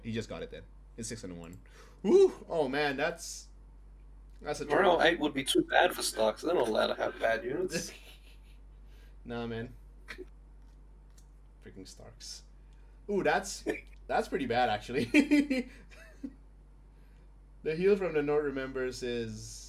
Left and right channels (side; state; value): both; identical; correlation 1.00